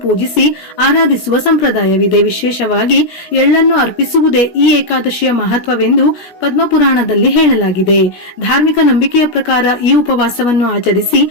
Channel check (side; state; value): right; late; 16 ms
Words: ಪೂಜಿಸಿ ಆರಾಧಿಸುವ ಸಂಪ್ರದಾಯವಿದೆ. ವಿಶೇಷವಾಗಿ ಎಳ್ಳನ್ನು ಅರ್ಪಿಸುವುದೇ ಈ ಏಕಾದಶಿಯ ಮಹತ್ವವೆಂದು ಪದ್ಮಪುರಾಣದಲ್ಲಿ ಹೇಳಲಾಗಿದೆ. ಧಾರ್ಮಿಕ ನಂಬಿಕೆಯ ಪ್ರಕಾರ ಈ ಉಪವಾಸವನ್ನು ಆಚರಿಸಿ